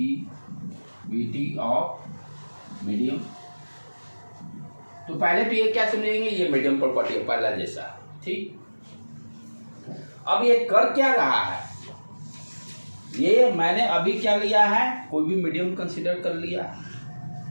ऑफ मीडियम। तो पहले तो ये क्या समझेंगे, ये मीडियम प्रॉपर्टी है पहला जैसा, ठीक। अब ये कर क्या रहा है, ये मैंने अभी क्या लिया है, कोई भी मीडियम कंसिडर कर लिया,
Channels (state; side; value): inverted; both; correlation -1.00